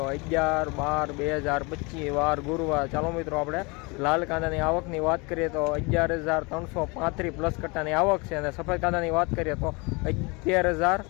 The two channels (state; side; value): quieter; right; 28.2 dB